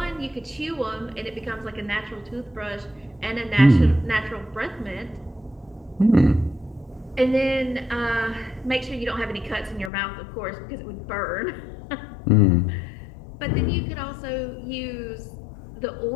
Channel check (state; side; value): drops out; right; at 9.9 s